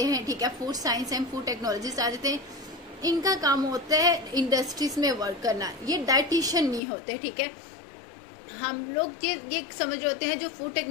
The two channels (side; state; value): right; drops out; at 6.8 s